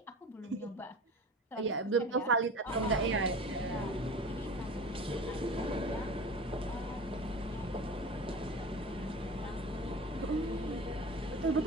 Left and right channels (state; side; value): normal; both; correlation 0.35